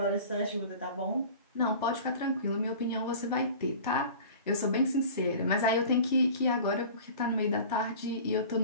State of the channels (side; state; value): both; inverted; correlation -0.41